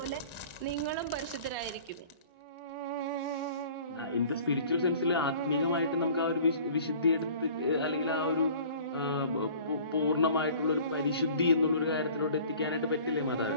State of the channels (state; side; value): inverted; both; correlation -0.48